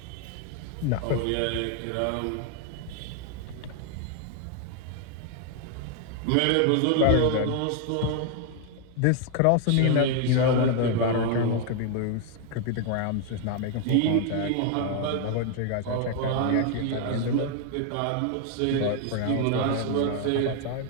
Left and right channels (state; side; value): different; both; correlation 0.01